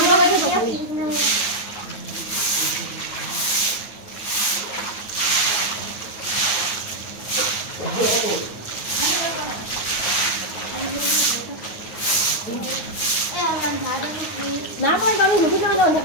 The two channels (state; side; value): late; right; 9.4 ms